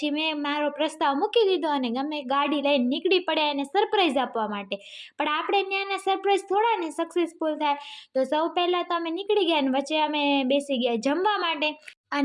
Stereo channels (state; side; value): identical; both; correlation 1.00